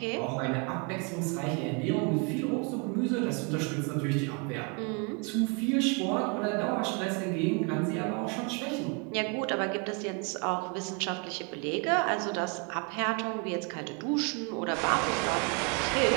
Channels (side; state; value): left; quieter; 33.4 dB